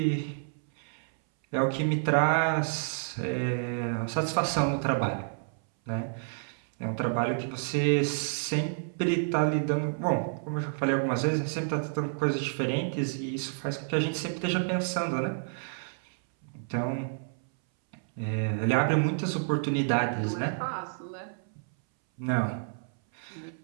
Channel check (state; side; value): silent; left; 58 dB below the other